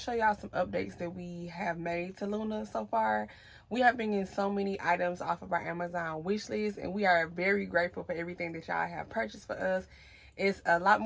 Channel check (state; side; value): identical; both; correlation 1.00